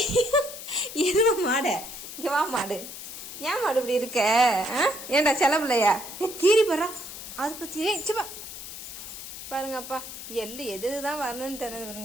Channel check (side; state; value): left; noise; hiss, 10 dB below the sound